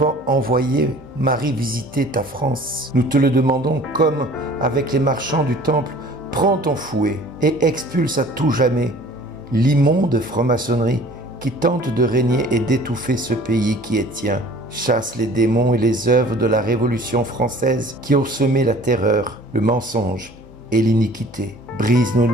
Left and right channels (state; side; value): normal; both; correlation 0.49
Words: envoyé Marie visiter ta France, nous te le demandons comme avec les marchands du temple, prends ton fouet et expulse à tout jamais l'immonde franc-maçonnerie qui tente de régner et d'étouffer ce pays qui est tien. Chasse les démons et les œuvres de la Révolution française qui ont semé la terreur, le mensonge et l'iniquité. Brise nos